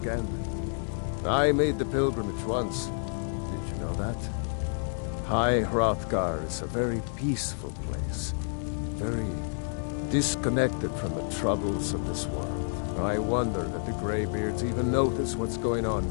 I made the pilgrimage once. Did you know that? High Hrothgar is a very peaceful place. Very disconnected from the troubles of this world. I wonder that the Greybeards even notice what's going on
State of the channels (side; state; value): right; silent; digital silence